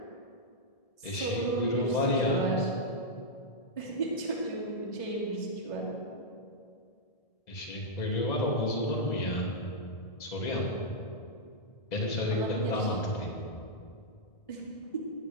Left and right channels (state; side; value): late; right; 1.7 ms